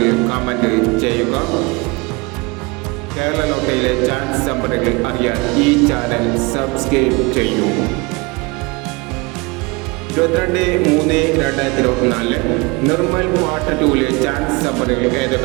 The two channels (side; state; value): left; quieter; 26.3 dB